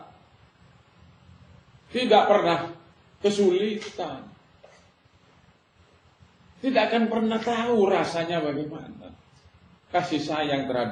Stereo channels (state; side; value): identical; both; correlation 1.00